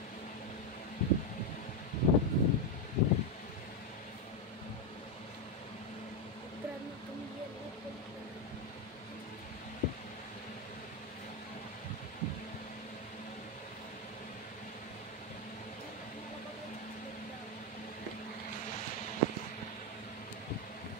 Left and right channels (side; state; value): both; normal; correlation 0.07